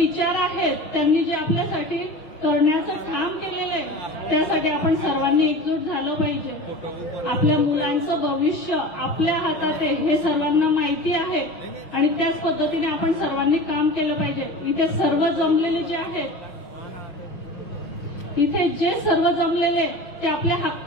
आहेत त्यांनी जे आपल्यासाठी करण्याचं काम केलेलं आहे त्यासाठी आपण सर्वांनी एकजूट झालं पाहिजे। आपल्या मुलांचं भविष्य आपल्या हातात आहे हे सर्वांना माहिती आहे आणि त्याच पद्धतीने आपण सर्वांनी काम केलं पाहिजे। इथे सर्व जमलेले जे आहेत, इथे जे सर्व जमलेले ते आपल्या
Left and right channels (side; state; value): right; late; 6.3 ms